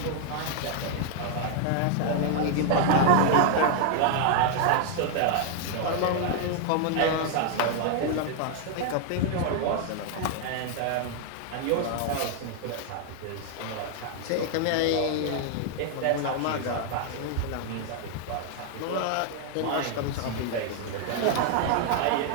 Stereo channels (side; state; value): both; different; correlation 0.00